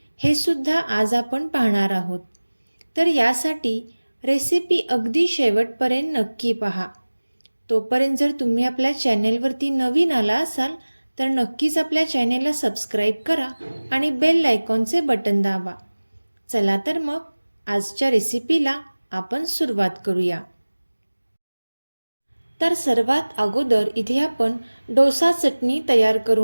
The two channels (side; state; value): both; inverted; correlation -1.00